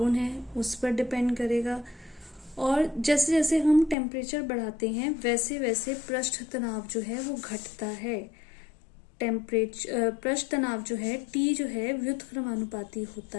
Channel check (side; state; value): right; drops out; at 4.0 s